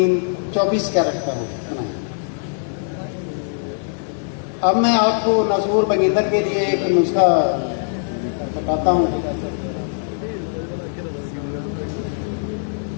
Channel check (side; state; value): right; silent; digital silence